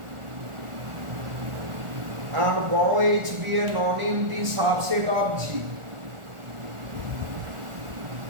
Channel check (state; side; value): late; left; 1.4 ms